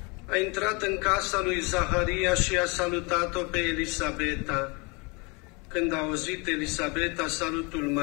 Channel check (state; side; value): quieter; right; 29.5 dB